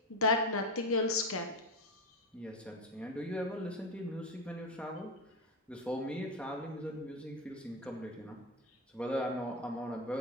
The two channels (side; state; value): both; normal; correlation 0.14